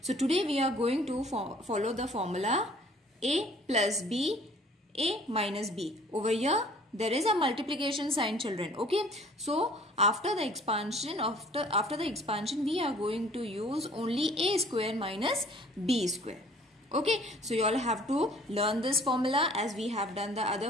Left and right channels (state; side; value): normal; both; correlation 0.53